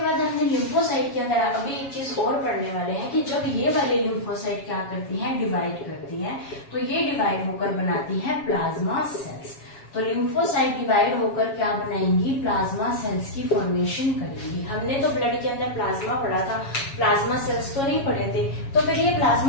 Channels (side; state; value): right; late; 7.3 ms